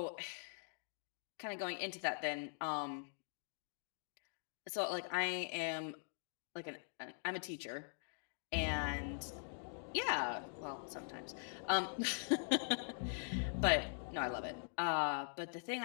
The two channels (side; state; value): right; silent; digital silence